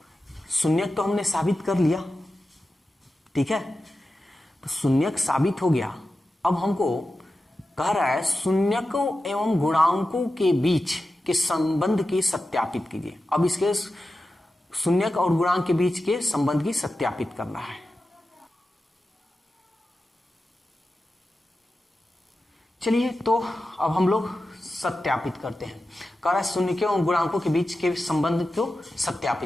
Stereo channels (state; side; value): normal; both; correlation 0.92